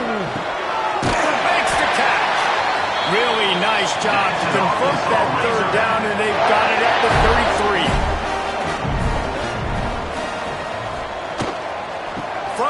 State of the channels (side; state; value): both; identical; correlation 1.00